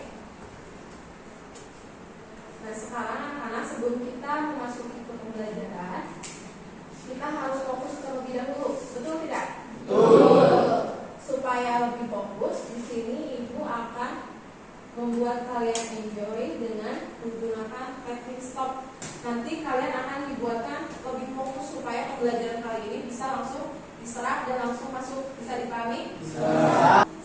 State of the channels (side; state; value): both; identical; correlation 1.00